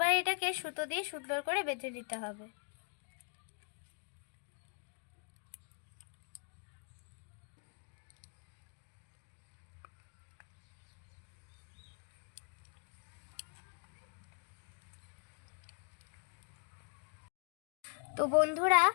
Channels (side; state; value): right; quieter; 39.2 dB